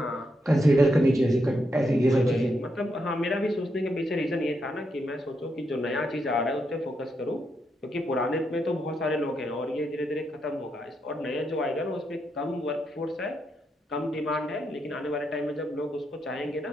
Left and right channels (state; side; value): normal; both; correlation 0.81